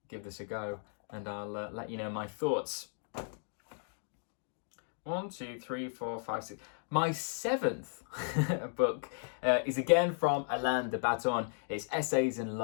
give this a go, and I'll let you know my thoughts. 1, 2, 3, 4, 5, 6. My 7th book is again from Alain de Botton. It's Essays in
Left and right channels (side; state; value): right; silent; digital silence